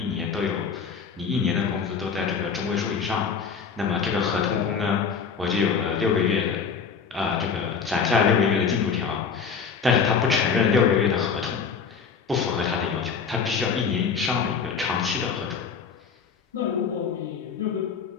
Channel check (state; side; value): quieter; right; 6.0 dB